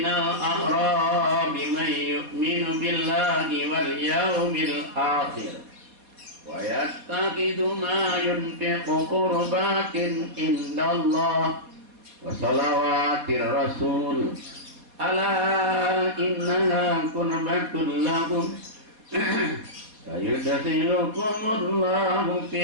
a'rabi man yu'minu billahi wal yawmil akhir wa yattaqidu ma yunfiqu qurbatin indallah wa salawatir rasul ala innaha qurbatun lahum sayudkhilukumullahu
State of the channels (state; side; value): late; left; 4.3 ms